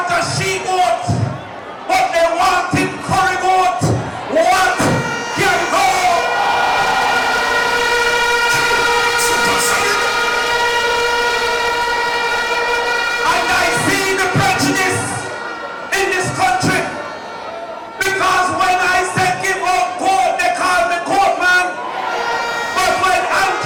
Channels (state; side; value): identical; both; correlation 1.00